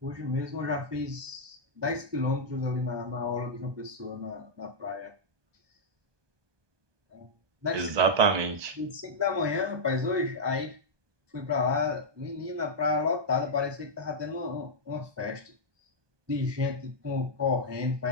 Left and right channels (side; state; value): left; late; 1.2 ms